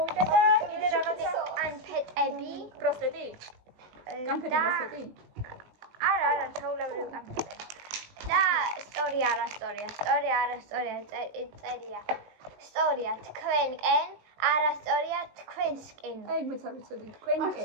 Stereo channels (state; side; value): late; left; 19 ms